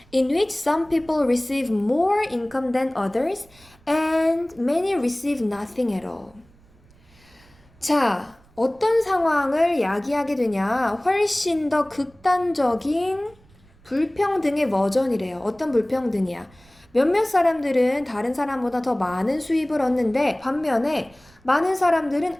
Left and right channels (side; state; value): right; noise; rumble, 29 dB below the sound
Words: in which some people receive more income than others and many receive nothing at all. 자, 어떤 상황을 야기하게 되냐? 훨씬 더 극단적인 불평등의 버전이래요. 어떤 불평등이야? 몇몇 사람들은 다른 사람보다 더 많은 수입을 얻는데 반면에 많은 사람들은